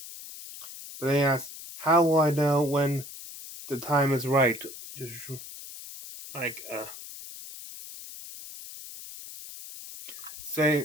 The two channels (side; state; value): left; noise; hiss, 13 dB below the sound